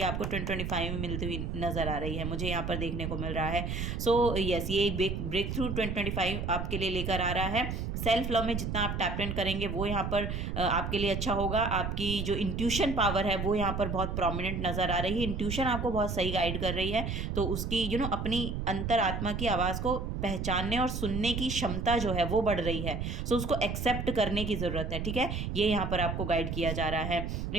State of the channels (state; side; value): noise; right; rumble, 3 dB below the sound